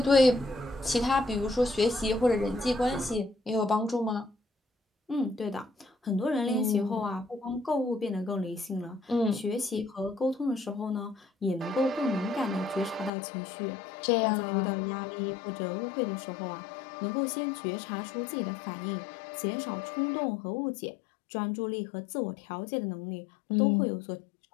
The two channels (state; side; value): drops out; right; at 13.1 s